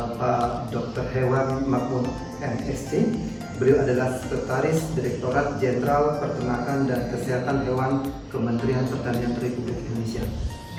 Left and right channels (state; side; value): identical; both; correlation 1.00